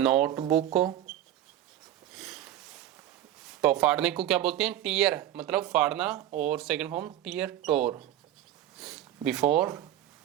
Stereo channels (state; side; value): quieter; left; 12.2 dB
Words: तो फाड़ने को क्या बोलते हैं? टीयर, मतलब फाड़ना, और second form tear tore. Before